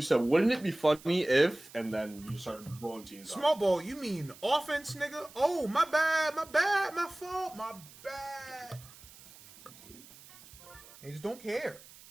wouldn't it be funny if, and then you started blowing teams Small ball, you mean offense, nigga? Oh, my bad, my fault, my bad. They just don't care.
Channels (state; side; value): noise; right; hiss, 21 dB below the sound